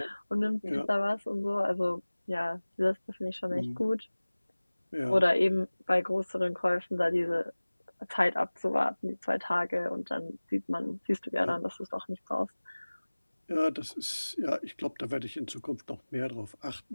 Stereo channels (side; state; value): both; inverted; correlation -1.00